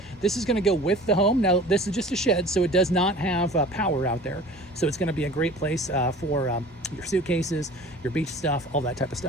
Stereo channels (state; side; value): normal; both; correlation 0.43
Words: This is going to go with the home. Now, this is just a shed, so it does not have power out there. So it's going to be a great place for your suitcases, your beach stuff, all that type of